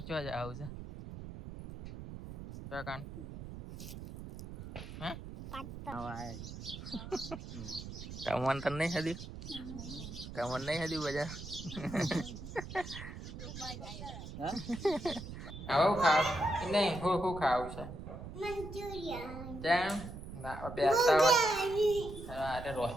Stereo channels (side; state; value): right; noise; rumble, 10 dB below the sound